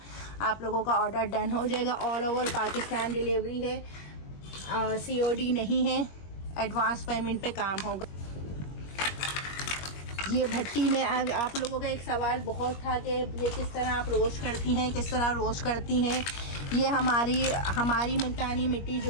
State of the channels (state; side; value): late; right; 21 ms